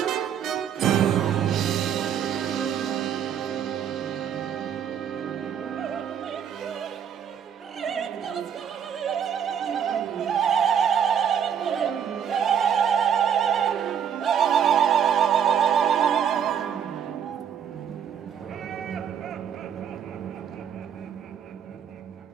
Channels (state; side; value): quieter; left; 8.3 dB